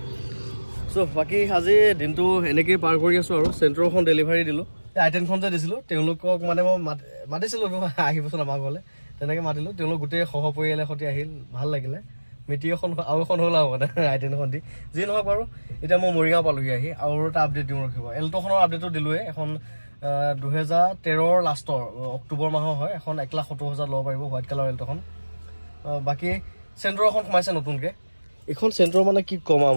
বাকী আজি দিনটো এনেকেই পাৰ কৰি আছো আৰু চেন্ট্ৰখন ডেলিভাৰী দিলোঁ আইটেনখন যে দিছিলোঁ তেওঁলোকক মানে মই মাতিছিলোঁ আহিবচোন আমাৰ ঘৰলৈ তেনেকৈ মাতিলোঁ তেওঁলোক গোটেই সহ পৰিয়ালৰ সৈতে আহিল ভাল লাগিলে মিটিং এখন আৰু এখন হ'ল আৰু মানে আইটেনখন দি যি নহওক বাৰু এতিয়া মই মৰিগাঁও পালোহি আহি আৰু এটা আপডেট দিওঁ ৰখিব এল্টোখনৰ আপডেটো দিলোঁৱে এখন 2013 লাষ্টৰ অক্টোবৰ মাহৰ হয় এখন 1,70,000 ল'ব পাৰিব হোৱাইট কালাৰ এল্টোখন বাকী চেন্ট্ৰ এখন সোমাইছে নতুনকৈ এইখন চেন্ট্ৰ মানে কি ক'ম আৰু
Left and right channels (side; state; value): both; inverted; correlation -1.00